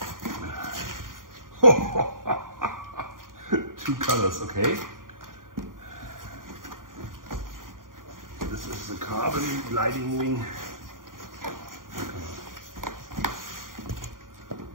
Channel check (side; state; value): left; late; 0.90 ms